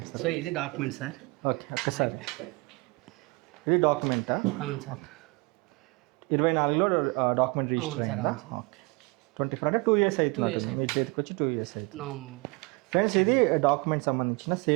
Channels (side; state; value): left; quieter; 26.6 dB